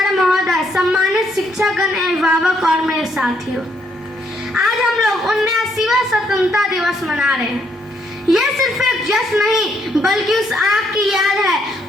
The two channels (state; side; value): normal; both; correlation 0.72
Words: महोदय, सम्मानित शिक्षकगण, अभिभावक और मेरे साथियों, आज हम लोग 79वां स्वतंत्रता दिवस मना रहे हैं। यह सिर्फ एक जश्न नहीं बल्कि उस आग की याद